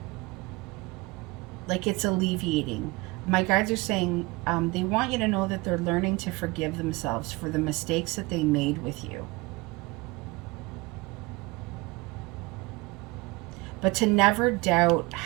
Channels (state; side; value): quieter; left; 24.0 dB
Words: Like it's alleviating. My guides are saying they want you to know that they're learning to forgive themselves for the mistakes that they made with you. But to never doubt